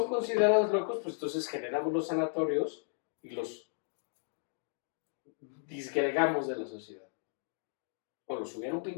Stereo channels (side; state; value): right; silent; digital silence